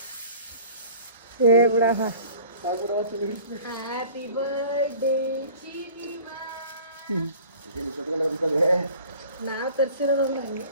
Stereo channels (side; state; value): both; inverted; correlation -0.46